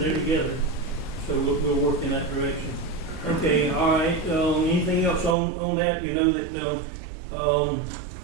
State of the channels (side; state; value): left; drops out; at 5.4 s